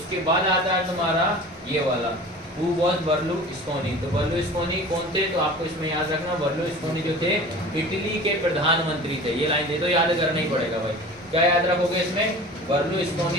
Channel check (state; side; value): normal; both; correlation 0.39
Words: बाद आता है तुम्हारा ये वाला, हु वॉज बर्लुस्कोनी। तो बर्लुस्कोनी कौन थे, तो आपको इसमें याद रखना, बर्लुस्कोनी जो थे इटली के प्रधानमंत्री थे। ये लाइन दे तो याद करना ही पड़ेगा भाई, क्या याद रखोगे इसमें,